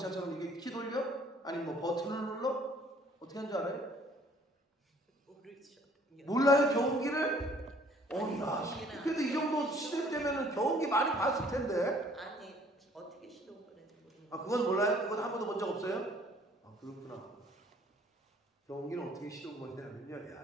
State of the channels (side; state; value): both; normal; correlation 0.58